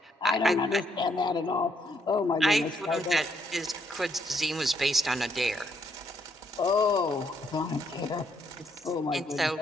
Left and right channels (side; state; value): both; normal; correlation 0.73